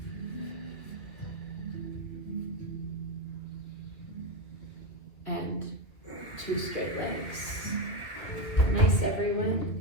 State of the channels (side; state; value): right; late; 2.3 ms